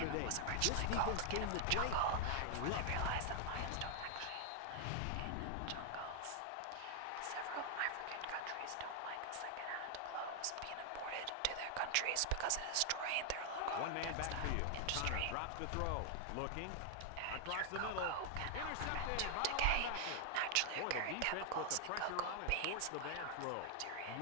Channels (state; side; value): different; both; correlation 0.00